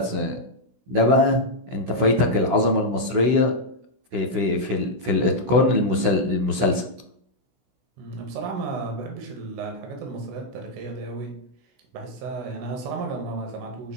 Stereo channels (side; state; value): left; late; 16 ms